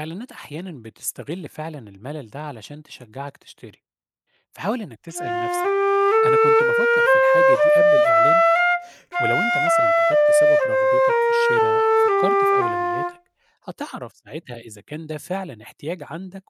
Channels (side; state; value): both; identical; correlation 1.00